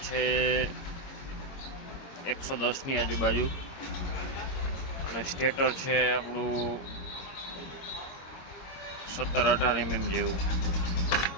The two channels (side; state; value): right; late; 22 ms